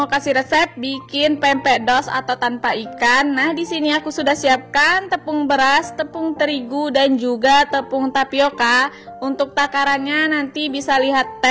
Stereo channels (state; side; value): identical; both; correlation 1.00